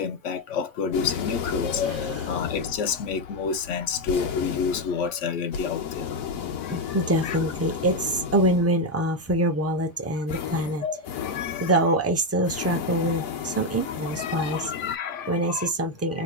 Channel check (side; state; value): both; normal; correlation 0.05